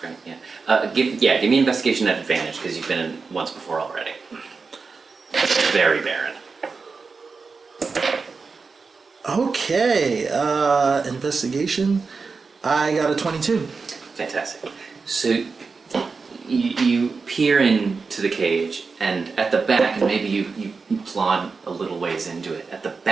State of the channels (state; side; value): quieter; left; 4.6 dB